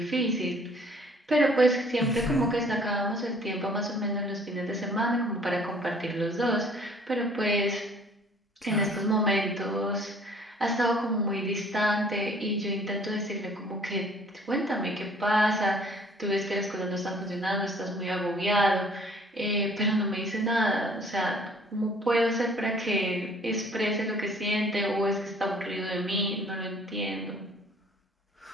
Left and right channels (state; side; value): normal; both; correlation 0.56